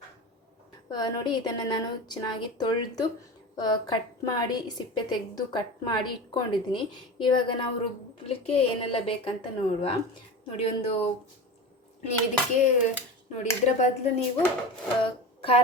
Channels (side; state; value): both; normal; correlation 0.29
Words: ನೋಡಿ, ಇದನ್ನು ನಾನು ಚೆನ್ನಾಗಿ ತೊಳೆದು ಕಟ್ ಮಾಡಿ ಸಿಪ್ಪೆ ತೆಗೆದು ಕಟ್ ಮಾಡಿ ಇಟ್ಕೊಂಡಿದ್ದೀನಿ. ಇವಾಗ ನಾವು ರುಬ್ಬಲಿಕ್ಕೆ ಏನೆಲ್ಲ ಬೇಕಂತ ನೋಡುವ. ನೋಡಿ, ನೀವು ಇದಕ್ಕೆ ನೋಡಿ, ಇದರ ಬದಲು ನೀವು